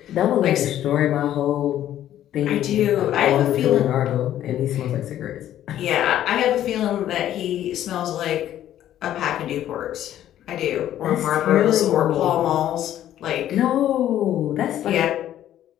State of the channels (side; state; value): right; quieter; 11.9 dB